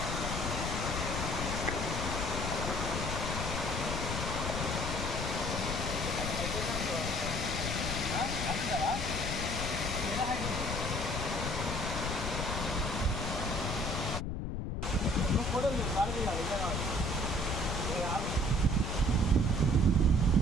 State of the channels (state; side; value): noise; left; rumble, 2 dB below the sound